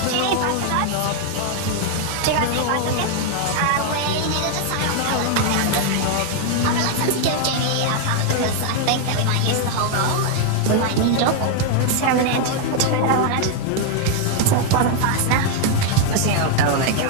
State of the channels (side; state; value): both; different; correlation 0.00